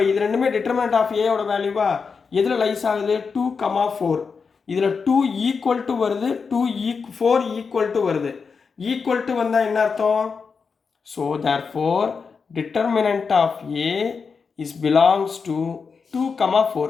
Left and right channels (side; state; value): right; quieter; 5.3 dB